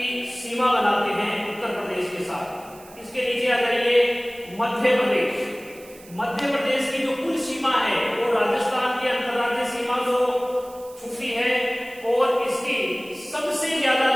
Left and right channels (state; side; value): noise; right; hiss, 22 dB below the sound